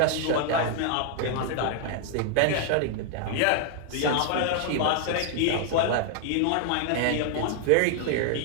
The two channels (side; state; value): both; different; correlation 0.00